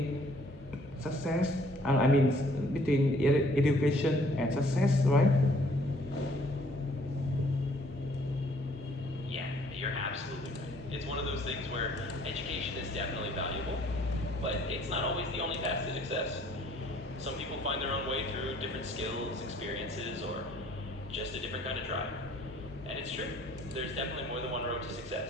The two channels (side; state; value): both; normal; correlation 0.60